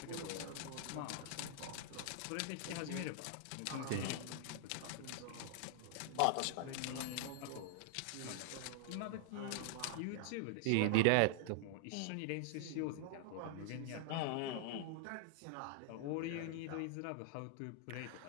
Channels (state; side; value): different; both; correlation -0.01